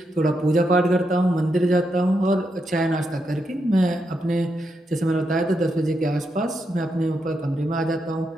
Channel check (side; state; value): both; normal; correlation 0.82